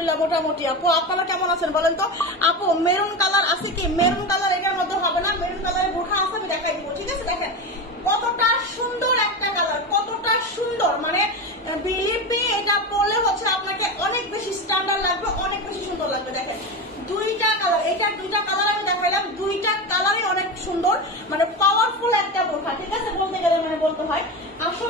মোটামুটি। আপু, আপনারা কেমন আছেন বলেন তো? আপু, মেরুন কালার আছে কি? মেরুন কালার এটার মধ্যে হবে না, মেরুন কালারের বোরখা আছে, আমি দেখাই দিব, ঠিক আছে। দেখেন কতটা সুন্দর একটা কালার, কতটা সুন্দর, মানে বিলিভ মি, এটা পরলে হচ্ছে আপনাকে অনেক বেশি স্ট্যান্ডার্ড লাগবে, অনেক বেশি সুন্দর লাগবে। দেখেন দুইটা কালার, এটার দুইটা কালার আমি দেখাইলাম, দুইটা কালারই অনেক সুন্দর, মানে পাওয়ারফুল একটা বোরখা, ঠিক আছে, বলতে গেলে মানে বলতে হয়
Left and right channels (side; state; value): both; normal; correlation 0.21